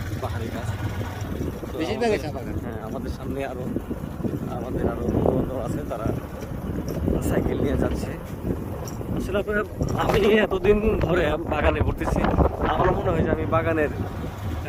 পাহাড়ি গাছ। হ্যাঁ, আমাদের সামনে আমাদের আরো বন্ধু আছে, তারা সাইকেল নিয়ে যাচ্ছে। আসলে আমি এতদিন ধরে বাগানে ঘুরতেছি, আমার মনে হয় যে আমি বাগানের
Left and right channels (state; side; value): identical; both; correlation 1.00